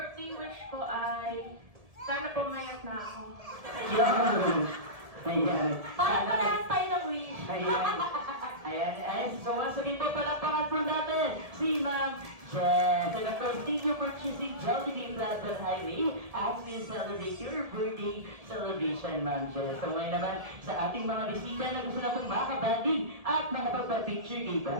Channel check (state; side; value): late; left; 1.7 ms